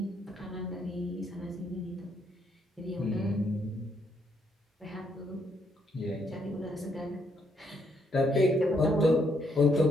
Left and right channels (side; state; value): both; normal; correlation 0.73